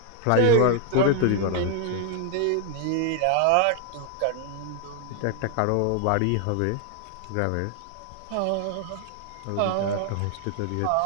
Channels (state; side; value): different; both; correlation 0.00